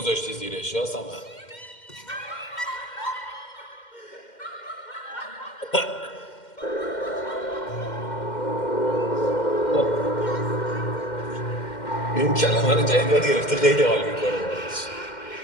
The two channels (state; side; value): late; right; 2.1 ms